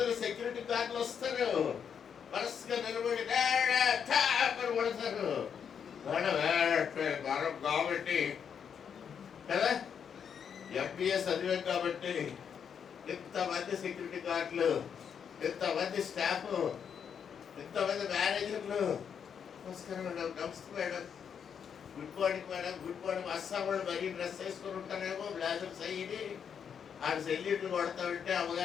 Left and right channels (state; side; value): quieter; right; 7.5 dB